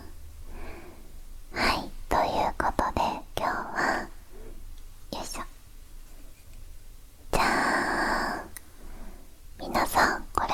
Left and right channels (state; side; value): identical; both; correlation 1.00